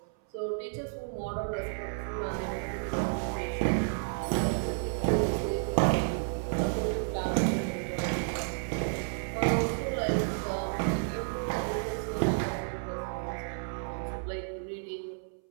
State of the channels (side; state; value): left; silent; 57 dB below the other